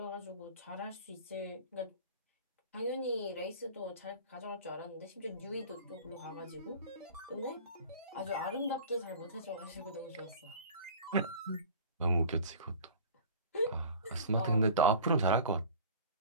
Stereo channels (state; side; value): inverted; both; correlation -0.41